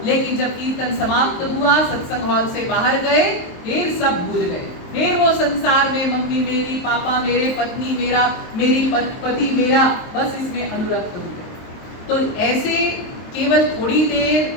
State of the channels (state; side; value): late; right; 23 ms